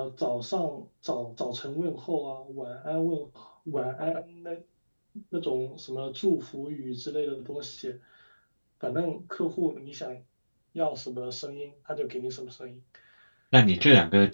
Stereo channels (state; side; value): inverted; both; correlation -1.00